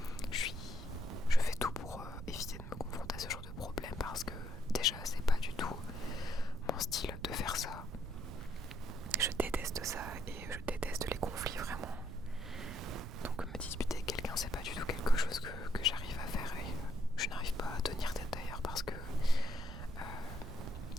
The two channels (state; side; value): noise; right; rumble, 9 dB below the sound